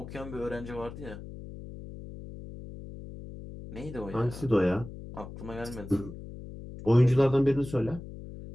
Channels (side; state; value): left; noise; hum, 12 dB below the sound